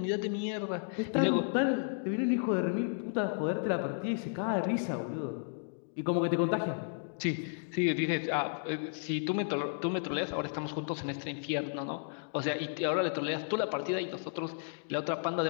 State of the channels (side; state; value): right; silent; digital silence